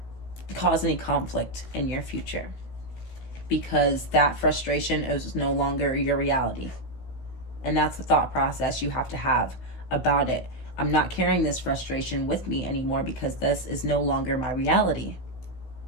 cause any conflict in your future, because that frustration is no longer your reality. And that's the thought process you have to have about it. I'm not carrying this frustration with me anymore because this is no longer my reality.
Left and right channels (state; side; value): late; right; 16 ms